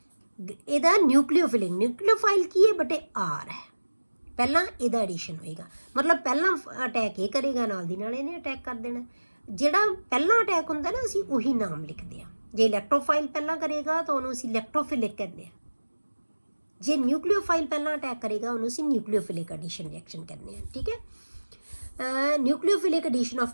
ਇਹਦਾ ਨਿਊਕਲੀਓਫਿਲਿਕ, ਨਿਊਕਲੀਓਫਾਈਲ ਕੀ ਹੈ ਬੇਟੇ, ਆਰ ਹੈ। ਪਹਿਲਾਂ ਇਹਦਾ ਐਡੀਸ਼ਨ ਹੋਏਗਾ, ਮਤਲਬ ਪਹਿਲਾਂ ਅਟੈਕ ਇਹ ਕਰੇਗਾ, ਨਾਲ ਦੀ ਨਾਲ ਇਹਨੇ ਅਟੈਕ ਕਰ ਦੇਣਾ। ਜਿਹੜਾ ਪਹਿਲਾਂ ਅਟੈਕ ਹੁੰਦਾ ਨਾ, ਅਸੀਂ ਉਹੀ ਨਾਮ ਲਿਖਦੇ ਹਾਂ। ਜੇ ਇਲੈਕਟ੍ਰੋਫਾਈਲ ਪਹਿਲਾਂ ਕਰੇਗਾ ਤਾਂ ਉਹਨੂੰ ਅਸੀਂ ਇਲੈਕਟ੍ਰੋਫਿਲਿਕ ਕਹਿੰਦੇ ਹਾਂ। ਜੇ ਨਿਊਕਲੀਓਫਾਈਲ ਪਹਿਲਾਂ ਅਟੈਕ ਕਰੇਗਾ ਉਹਨੂੰ ਅਸੀਂ ਨਿਊਕਲੀਓਫਿਲਿਕ ਐਡੀਸ਼ਨ ਰਿਐਕਸ਼ਨ ਕਹਿੰਦੇ ਹਾਂ। ਠੀਕ ਹੈ। Nucleophilic addition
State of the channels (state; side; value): inverted; both; correlation -1.00